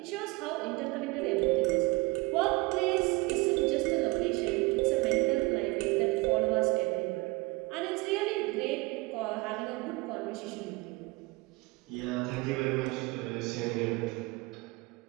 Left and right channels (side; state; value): left; quieter; 24.2 dB